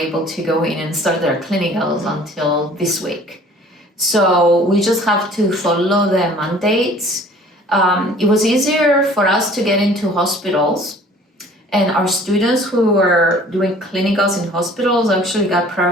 to go in and start their clinicals until this week. So we just have to follow the mandates. It was easier for us to get into hospitals, and our students who were doing clinicals in hospitals actually got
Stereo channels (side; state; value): both; normal; correlation 0.51